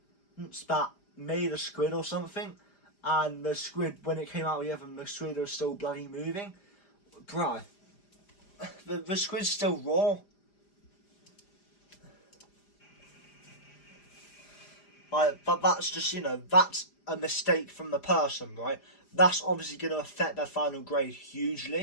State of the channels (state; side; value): late; right; 5.0 ms